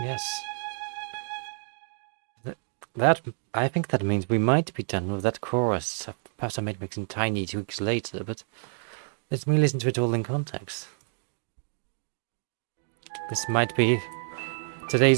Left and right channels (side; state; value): left; silent; digital silence